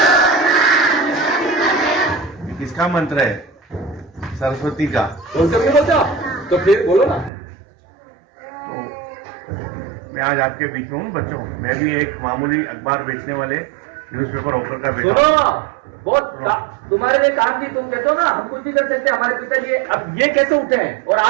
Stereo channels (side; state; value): left; drops out; at 7.3 s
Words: किसका मंत्र है? सरस्वती का। बोलते तो फिर बोलो ना। तो मैं आज आपके बीच में हूँ बच्चों। मैं भी एक मामूली अखबार बेचने वाले न्यूज़पेपर ऑफर का बेटा। सुनो, बहुत तुम्हारे लिए काम की। तुम कहते हो ना हम कुछ भी कर सकते हैं, हमारे पिताजी अब ये कैसे उठे हैं और